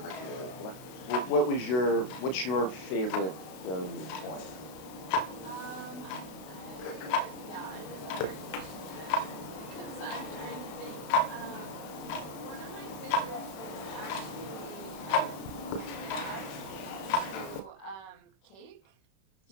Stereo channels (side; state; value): right; late; 32 ms